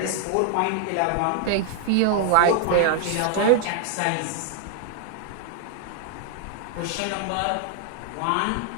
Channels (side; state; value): both; different; correlation 0.00